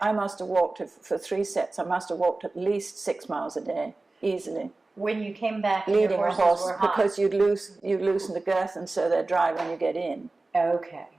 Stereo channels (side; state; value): left; quieter; 3.3 dB